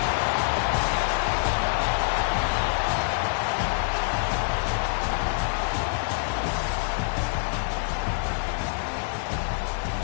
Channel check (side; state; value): right; silent; digital silence